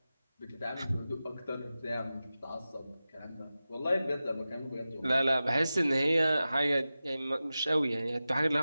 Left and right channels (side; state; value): both; inverted; correlation -0.94